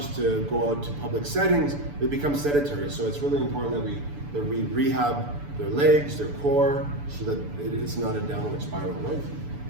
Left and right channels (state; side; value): late; left; 6.9 ms